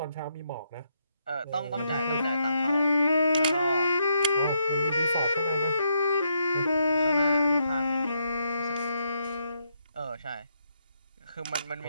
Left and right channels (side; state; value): both; inverted; correlation -0.78